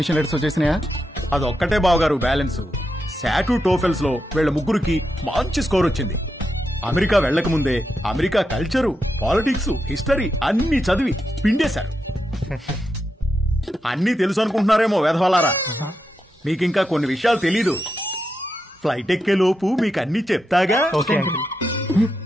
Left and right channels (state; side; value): normal; both; correlation 0.86